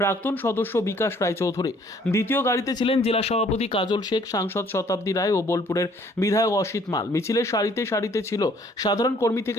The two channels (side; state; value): both; normal; correlation 0.60